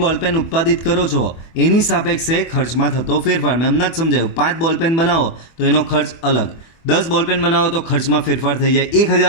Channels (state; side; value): late; right; 24 ms